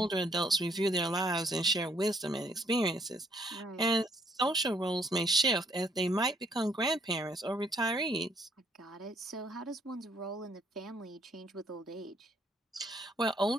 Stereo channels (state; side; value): normal; both; correlation 0.67